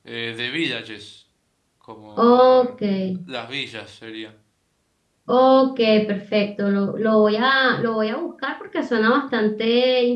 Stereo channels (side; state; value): both; identical; correlation 1.00